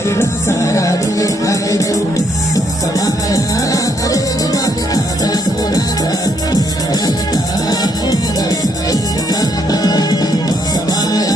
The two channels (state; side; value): normal; both; correlation 0.73